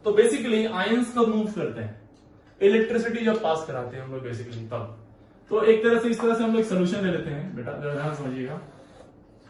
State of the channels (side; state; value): both; identical; correlation 1.00